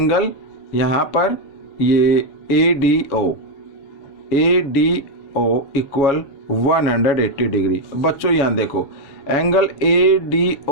यहाँ पर ये ADO इक्वल 180 डिग्री। बच्चों यहाँ देखो एंगल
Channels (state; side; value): late; right; 7.2 ms